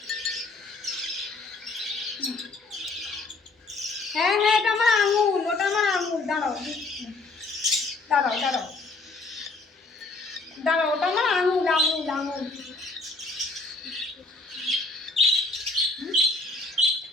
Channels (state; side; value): quieter; right; 3.4 dB